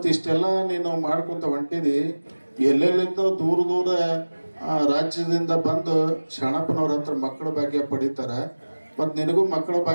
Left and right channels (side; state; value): both; inverted; correlation -1.00